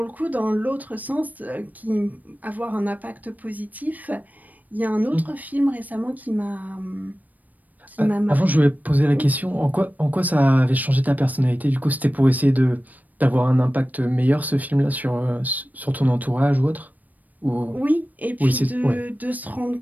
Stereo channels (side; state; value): left; late; 0.081 ms